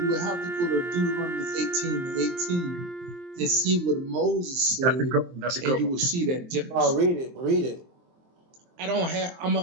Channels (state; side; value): late; left; 23 ms